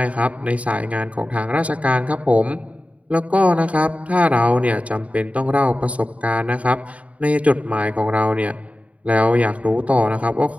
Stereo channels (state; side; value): late; left; 0.067 ms